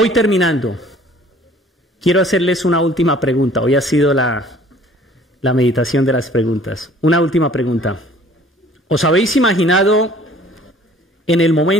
terminando. Quiero hacerles una última pregunta. Hoy ha sido la meditación de las preguntas. Una última pregunta. ¿Os habéis imaginado en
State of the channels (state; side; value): normal; both; correlation 0.53